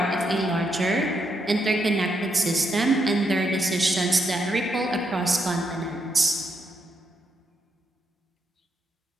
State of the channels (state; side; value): normal; both; correlation 0.78